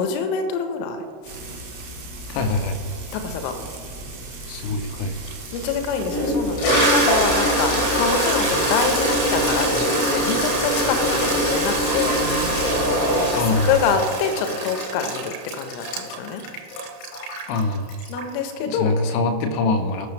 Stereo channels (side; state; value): right; late; 32 ms